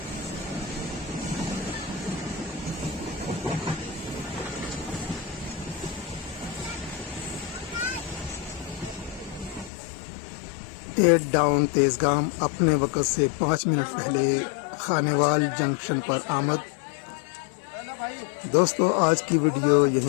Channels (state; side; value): drops out; right; at 9.7 s